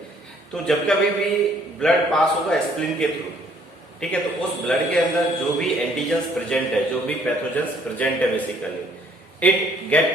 तो जब कभी भी ब्लड पास होगा स्प्लीन के थ्रू, ठीक है, तो उस ब्लड के अंदर जो भी एंटीजेंस प्रेजेंट है, जो भी पैथोजेंस प्रेजेंट है basically, it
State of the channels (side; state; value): both; normal; correlation 0.62